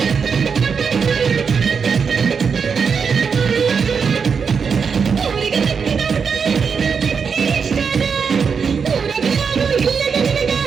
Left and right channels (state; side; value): quieter; left; 6.0 dB